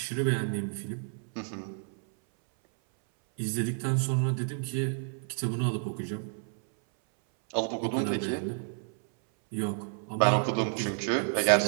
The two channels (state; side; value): silent; left; 58 dB below the other